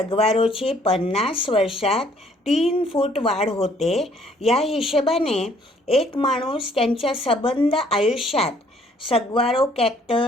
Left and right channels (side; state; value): both; normal; correlation 0.62